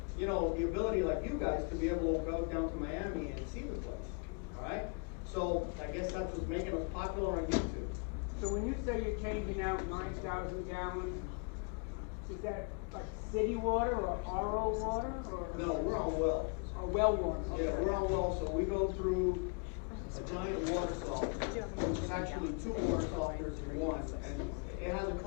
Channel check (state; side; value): quieter; right; 35.3 dB